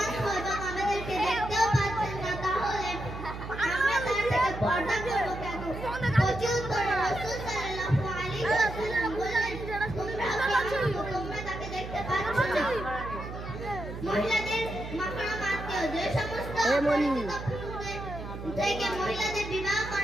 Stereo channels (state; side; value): noise; right; hum, 9 dB below the sound